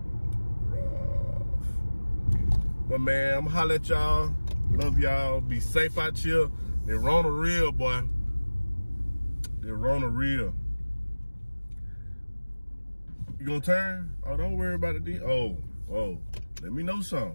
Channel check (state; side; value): inverted; both; correlation -1.00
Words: Rough. But man, I'm gonna holler at y'all. Love y'all. Be safe out here. They're Rona real, boy. They're Rona real. You gonna turn? Oh, don't worry about it. Oh, let me know